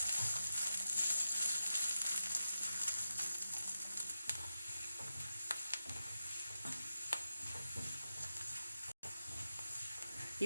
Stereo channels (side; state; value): both; inverted; correlation -0.91